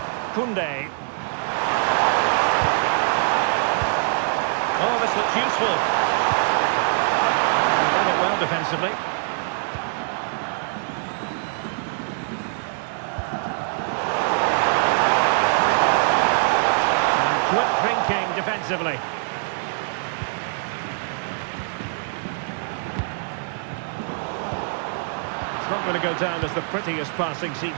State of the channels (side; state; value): left; silent; 63 dB below the other